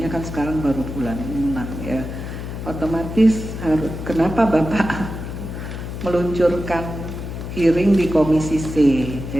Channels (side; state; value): left; noise; hum, 7 dB below the sound